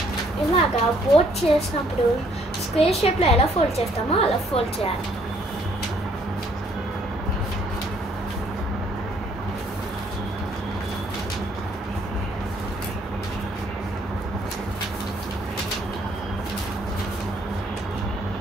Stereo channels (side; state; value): both; normal; correlation 0.65